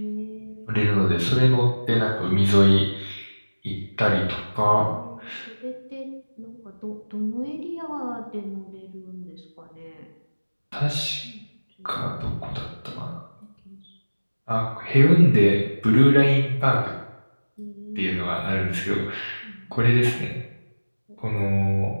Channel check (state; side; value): inverted; both; correlation -1.00